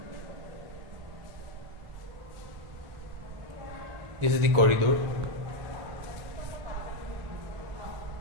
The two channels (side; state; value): left; late; 1.4 ms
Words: This is the corridor.